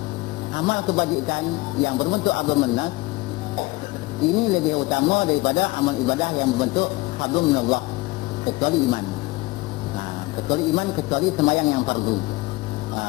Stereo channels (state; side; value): quieter; right; 21.4 dB